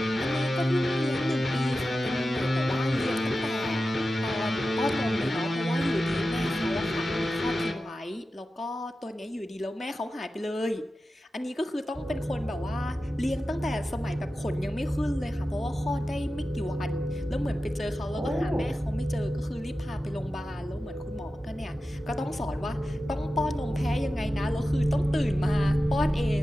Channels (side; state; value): both; normal; correlation 0.93